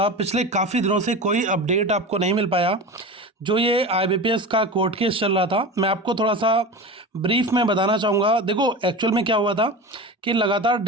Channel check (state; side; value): normal; both; correlation 0.28